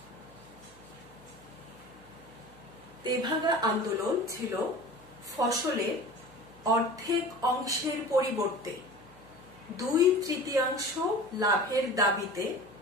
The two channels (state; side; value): noise; right; hum, 26 dB below the sound